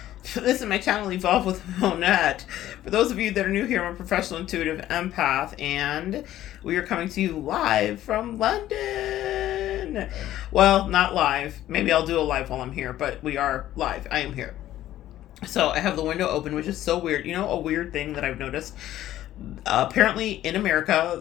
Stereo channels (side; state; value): right; quieter; 13.4 dB